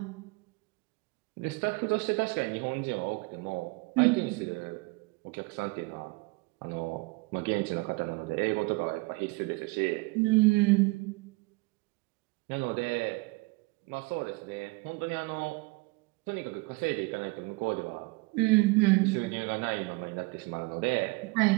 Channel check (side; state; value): left; quieter; 25.6 dB